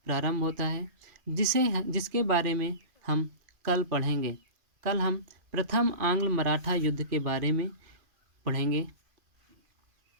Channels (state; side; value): late; left; 2.4 ms